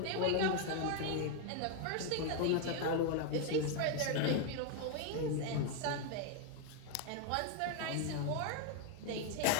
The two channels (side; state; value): both; different; correlation 0.01